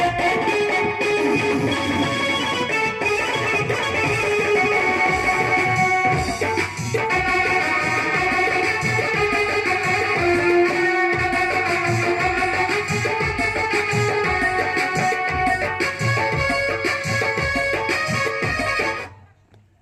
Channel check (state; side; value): identical; both; correlation 1.00